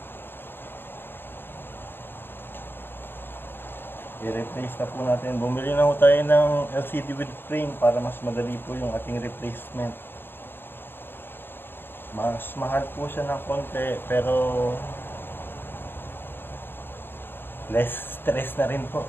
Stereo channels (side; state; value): right; late; 0.099 ms